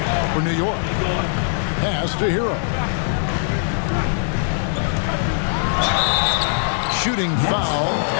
for New York. Pass to Hero. Shooting foul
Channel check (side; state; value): right; silent; digital silence